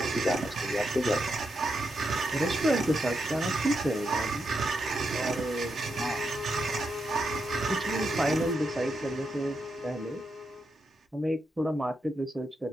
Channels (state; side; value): normal; both; correlation 0.84